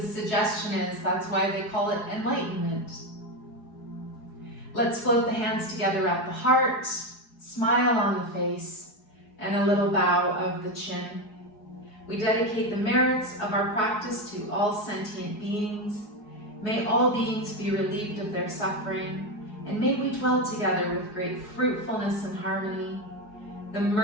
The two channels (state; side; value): late; right; 4.7 ms